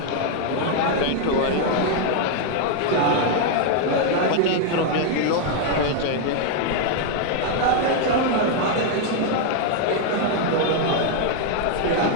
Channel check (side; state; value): both; different; correlation 0.00